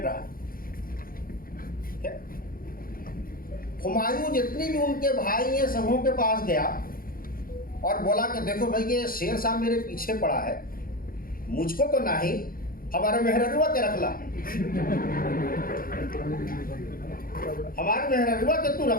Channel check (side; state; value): right; late; 0.42 ms